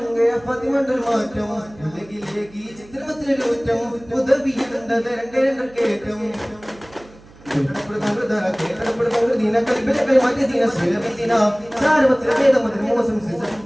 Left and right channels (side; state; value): right; noise; hum, 23 dB below the sound